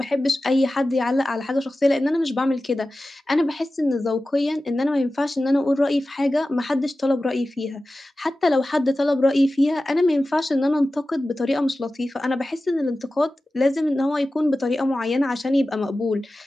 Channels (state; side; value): normal; both; correlation 0.95